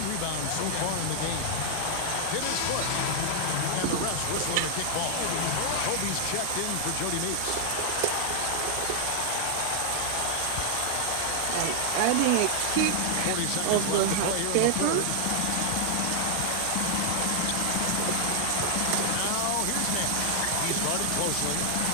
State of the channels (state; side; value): different; both; correlation 0.00